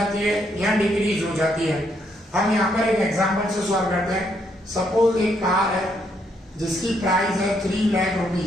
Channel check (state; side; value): normal; both; correlation 0.74